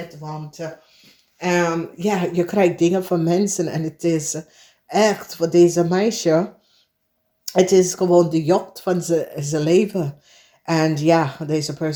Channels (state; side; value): identical; both; correlation 1.00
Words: want ja, je krijgt dingen van mensen en het is echt voor deze meisje, het is gewoon de jacht van zijn leven. En ja, deze